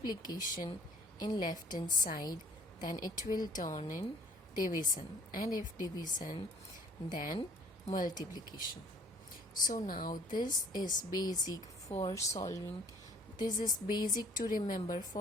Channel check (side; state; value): both; normal; correlation 0.55